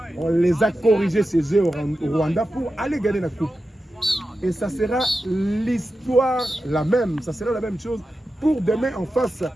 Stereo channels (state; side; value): normal; both; correlation 0.91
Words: On les a corrigés ces jeux au Rwanda pour aller gagner la coupe. Et ça sera l'histoire la même, ça sera la même chose pour demain en face